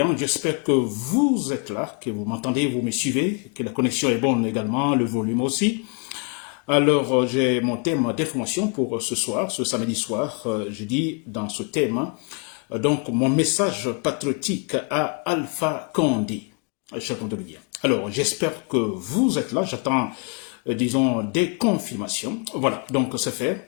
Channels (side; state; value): right; quieter; 34.4 dB